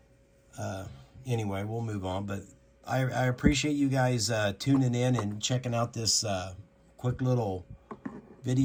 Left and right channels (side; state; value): both; identical; correlation 1.00